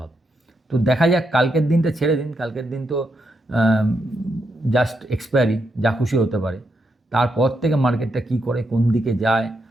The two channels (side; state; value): both; normal; correlation 0.82